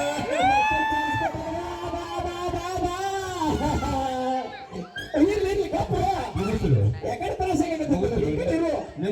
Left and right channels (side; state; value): both; identical; correlation 1.00